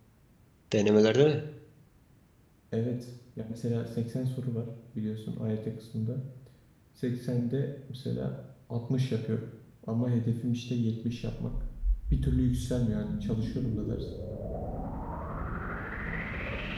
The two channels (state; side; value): identical; both; correlation 1.00